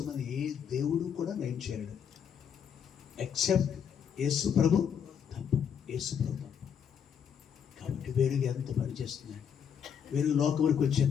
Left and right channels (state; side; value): quieter; right; 7.8 dB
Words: ఏ దేవుడు కూడా నయం చేయలేడు ఎక్సెప్ట్ యేసు ప్రభు తప్ప. యేసు ప్రభు తప్ప. కాబట్టి వెలుగు ఎంత పనిచేస్తున్నాడు. వెలుగు లోకంలోకి